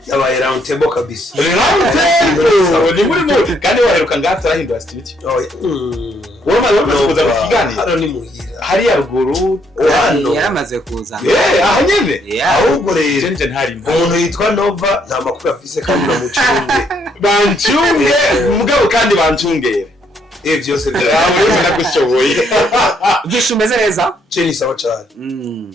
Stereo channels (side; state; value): both; normal; correlation 0.71